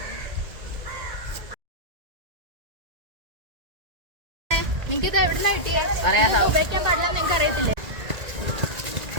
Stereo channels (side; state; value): left; late; 2.0 ms